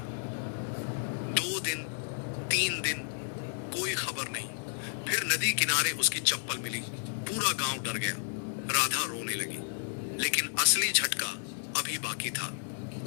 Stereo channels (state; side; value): silent; right; digital silence